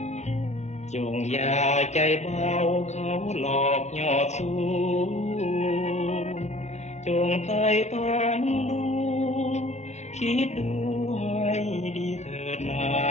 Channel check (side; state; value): right; late; 0.33 ms